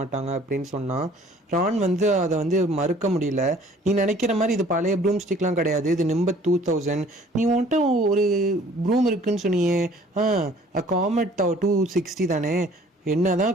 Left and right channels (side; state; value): both; normal; correlation 0.54